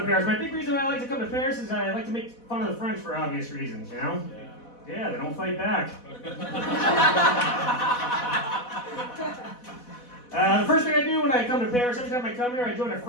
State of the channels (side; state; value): right; late; 4.1 ms